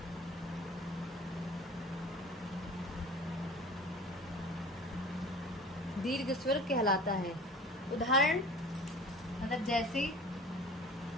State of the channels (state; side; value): normal; both; correlation 0.41